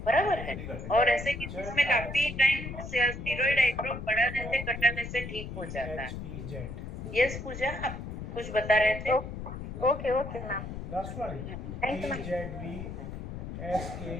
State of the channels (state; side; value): noise; left; rumble, 8 dB below the sound